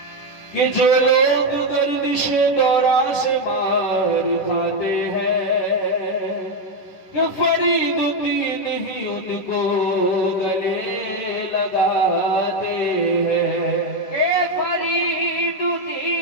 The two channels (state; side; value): late; right; 10 ms